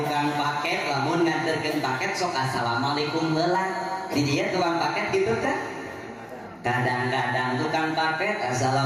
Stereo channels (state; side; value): identical; both; correlation 1.00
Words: paket lamun nganterkeun paket sok assalamualaikum heula di dieu tukang paket gitu teh kadang-kadang tukang paket